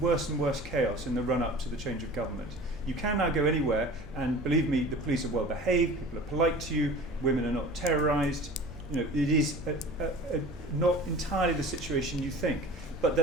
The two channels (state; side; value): normal; both; correlation 0.40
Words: and worse chaos in the run-up to the change of government. You can now go anywhere, and believe me, the police are well behaved, people are polite to you, women are not terrorised. You know, it is not entirely the situation you think. But